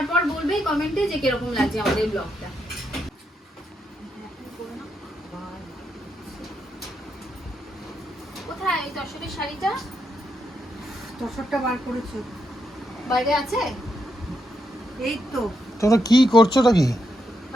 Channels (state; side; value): normal; both; correlation 0.81